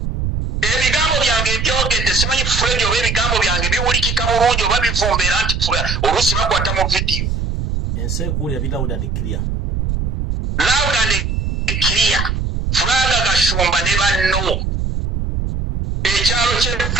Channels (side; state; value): right; noise; rumble, 1 dB below the sound